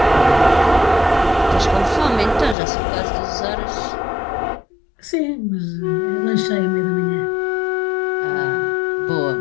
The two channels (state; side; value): drops out; right; at 2.6 s